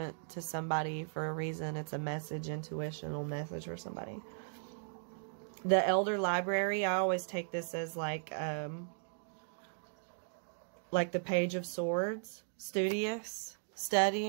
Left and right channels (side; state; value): left; silent; digital silence